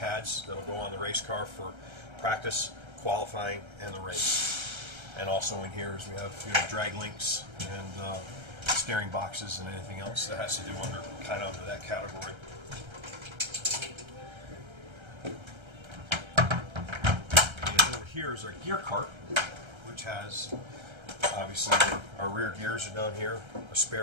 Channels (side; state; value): left; late; 1.3 ms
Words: that'll go on the race car for practice, qualifying, and the race. And also in here is we have drag links and steering boxes and anything else that has to do under that category. And over here is our gear cart, which has obviously our rear gears are down here, a